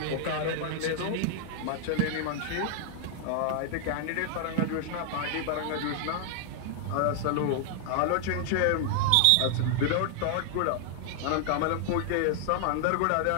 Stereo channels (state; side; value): different; both; correlation 0.00